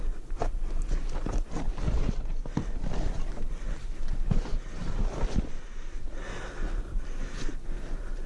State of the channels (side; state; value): both; identical; correlation 1.00